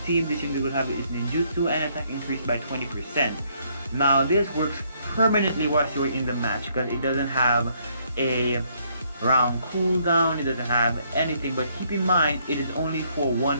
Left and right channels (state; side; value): inverted; both; correlation -0.69